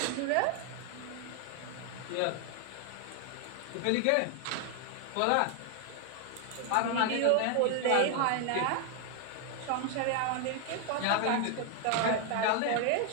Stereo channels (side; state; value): both; different; correlation 0.00